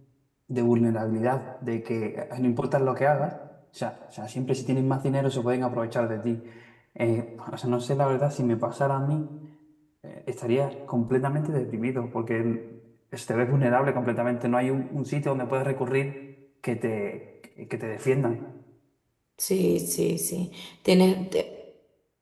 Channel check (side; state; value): both; identical; correlation 1.00